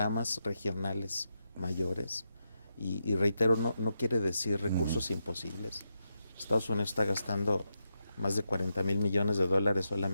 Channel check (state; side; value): inverted; both; correlation -0.85